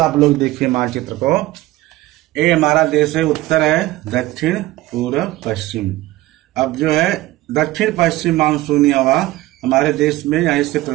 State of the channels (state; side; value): quieter; left; 17.3 dB